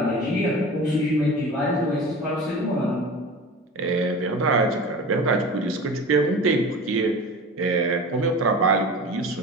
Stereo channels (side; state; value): both; normal; correlation 0.35